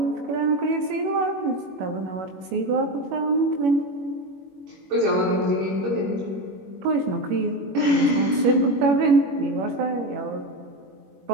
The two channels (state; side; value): late; left; 21 ms